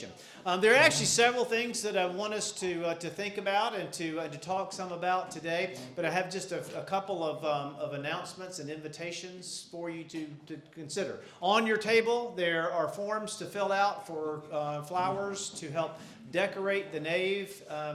There are actually several things that I want us to think about and to talk some about today, but I have just a couple of announcements and invitations for you to consider. On your table, there are forms to fill out for flowers to help decorate the nave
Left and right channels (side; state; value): both; identical; correlation 1.00